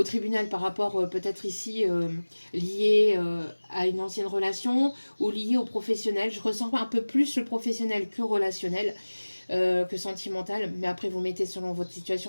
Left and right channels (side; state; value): both; inverted; correlation -1.00